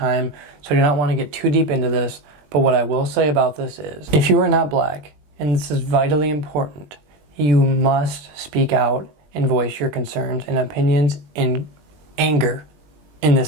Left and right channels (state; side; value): late; left; 20 ms